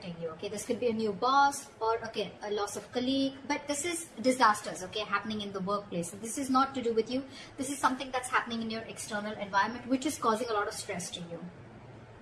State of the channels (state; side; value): identical; both; correlation 1.00